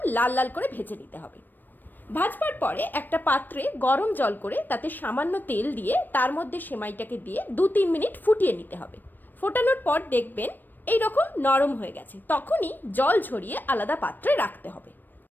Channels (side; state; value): right; late; 0.091 ms